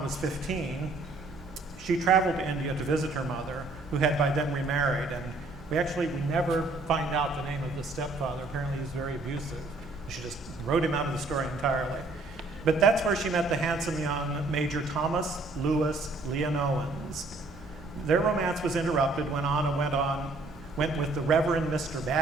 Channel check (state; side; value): quieter; left; 3.2 dB